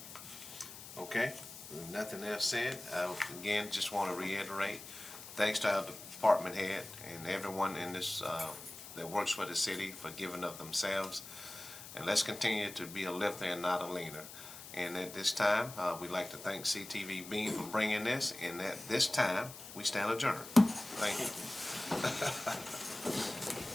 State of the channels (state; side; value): noise; left; hiss, 13 dB below the sound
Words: Okay, with nothing else said, I again just want to reiterate, thanks to our department head and everyone in this that works for the city for giving of themselves. And let's continue to be a lifter and not a leaner. And at this time, we'd like to thank CTVBeam for bringing this. And at this time, we stand adjourned. Thank